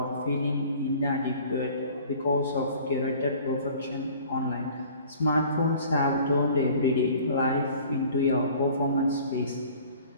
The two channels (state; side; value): inverted; both; correlation -0.48